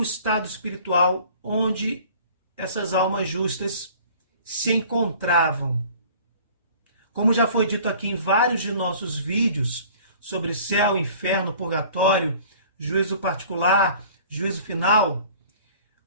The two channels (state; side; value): inverted; both; correlation -0.49